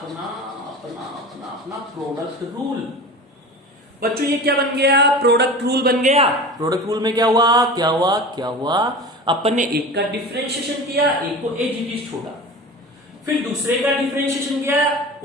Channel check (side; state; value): both; normal; correlation 0.34